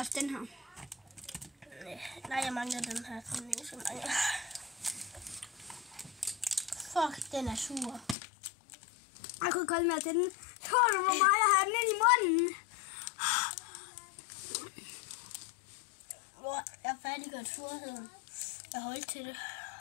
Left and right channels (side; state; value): right; drops out; at 8.2 s